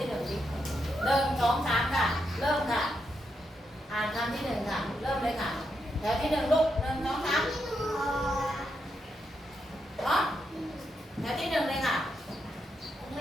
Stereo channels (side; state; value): both; normal; correlation 0.82